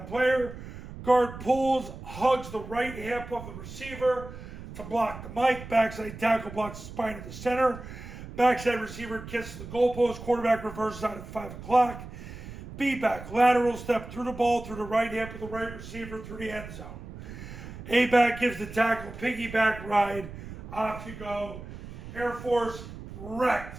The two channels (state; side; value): noise; right; rumble, 12 dB below the sound